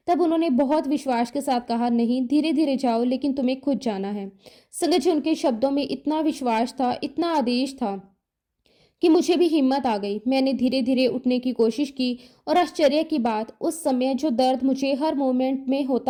तब उन्होंने बहुत विश्वास के साथ कहा, नहीं, धीरे धीरे जाओ, लेकिन तुम्हें खुद जाना है। संगत जी, उनके शब्दों में इतना विश्वास था, इतना आदेश था कि मुझे भी हिम्मत आ गई। मैंने धीरे धीरे उठने की कोशिश की और आश्चर्य की बात, उस समय जो दर्द मुझे हर मोमेंट में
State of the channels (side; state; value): both; identical; correlation 1.00